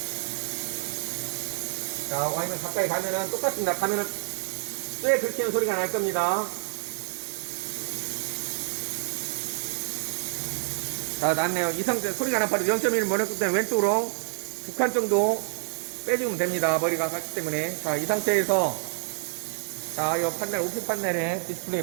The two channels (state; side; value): silent; left; digital silence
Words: 자, Y면 가까이 가면은 똑같습니다. 가면은 쇠 긁히는 소리가 날 겁니다. 자, 났네요. 이 상태 소리가 나 바로 0.1을 머리끝 때는 왼쪽으로 2칸 정도 빼주면 됩니다. 머리가 갔기 때문에. 자, 이 상태에서 자, 이 판넬, 오픈 판넬에 디스플레이